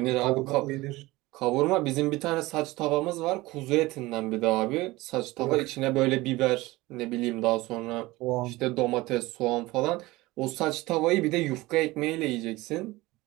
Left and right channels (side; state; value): left; quieter; 19.9 dB